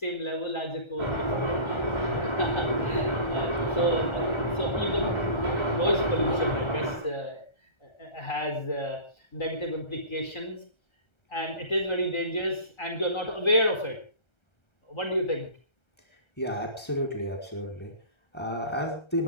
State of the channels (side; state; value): right; late; 1.3 ms